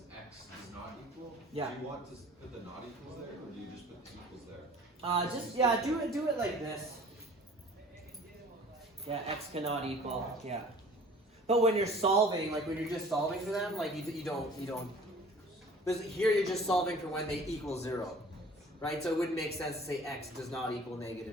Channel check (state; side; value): normal; both; correlation 0.48